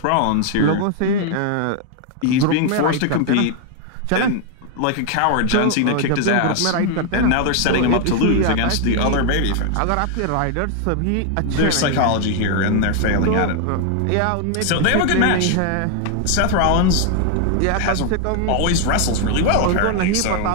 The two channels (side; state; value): both; different; correlation 0.00